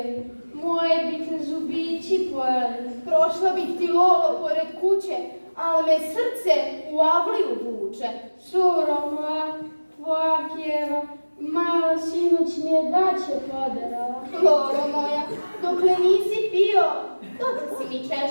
moje bi te zubići pojeli. Prošla bih ti Lolo pored kuće, ali me srce u avliju vuče. Suro moja, tvoja kjeva, malo sinoć mi je daće podarala. Lolo moja, dokle nisi pio, dok si mi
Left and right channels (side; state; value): both; inverted; correlation -1.00